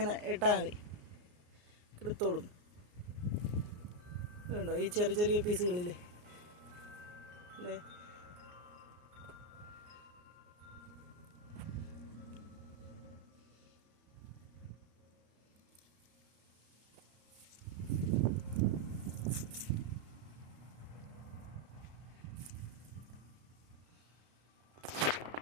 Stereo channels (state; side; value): late; left; 34 ms